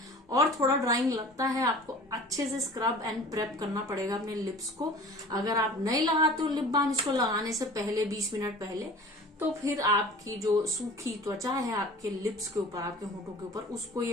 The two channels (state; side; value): normal; both; correlation 0.43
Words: और थोड़ा ड्राइंग लगता है। आपको अच्छे से स्क्रब एंड प्रेप करना पड़ेगा अपने लिप्स को। अगर आप नहीं लगाते हो लिप बाम इसको लगाने से पहले 20 मिनट पहले, तो फिर आपकी जो सूखी त्वचा है आपके लिप्स के ऊपर, आपके होंठों के ऊपर, उसको